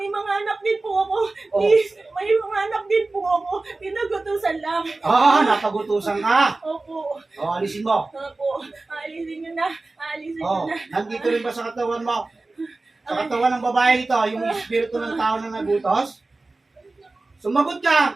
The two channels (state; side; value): quieter; left; 3.3 dB